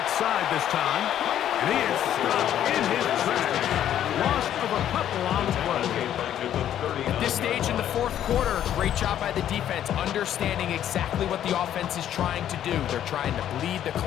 side this time. And he is stopped in his tracks. Loss of a couple on the play. At this stage in the fourth quarter, great job by the defense, understanding exactly what the offense is trying to do. They're trying to bleed the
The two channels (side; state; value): right; quieter; 10.9 dB